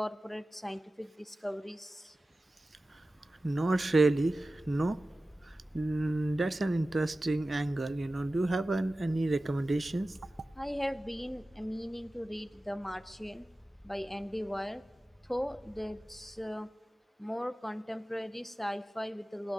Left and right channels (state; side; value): normal; both; correlation 0.95